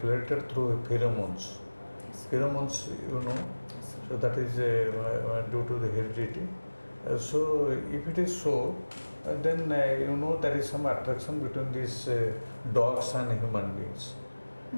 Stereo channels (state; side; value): inverted; both; correlation -1.00